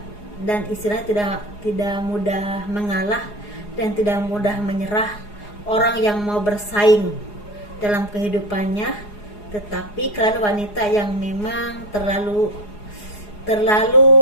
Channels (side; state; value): right; late; 4.8 ms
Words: dan istilahnya tidak mudah mengalah dan tidak mudah menyerah, orang yang mau bersaing dalam kehidupannya. Tetapi kalian wanita yang memang terlalu